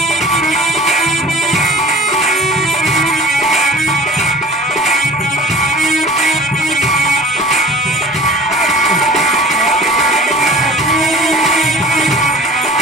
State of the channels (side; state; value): both; normal; correlation 0.44